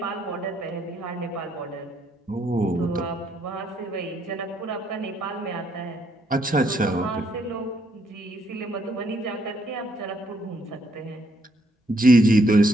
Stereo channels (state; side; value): normal; both; correlation 0.72